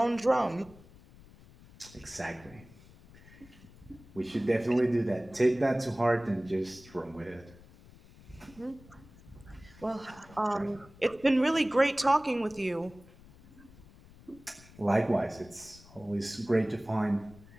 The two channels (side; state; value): left; noise; rumble, 22 dB below the sound